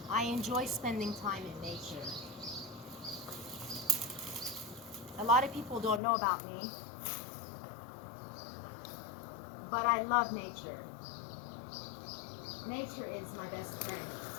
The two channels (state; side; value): drops out; right; at 6.0 s